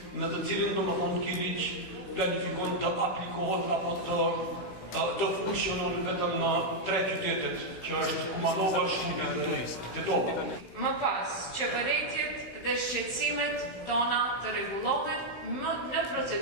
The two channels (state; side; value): late; right; 16 ms